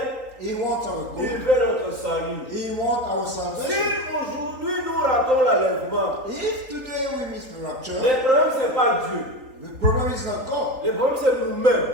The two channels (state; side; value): late; left; 3.8 ms